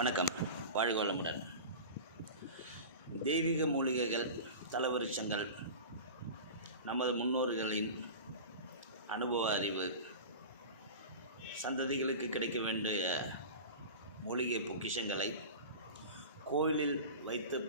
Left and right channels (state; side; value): inverted; both; correlation -0.31